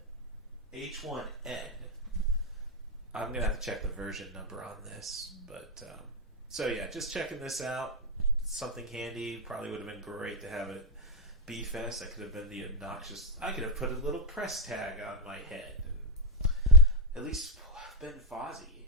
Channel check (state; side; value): normal; both; correlation 0.02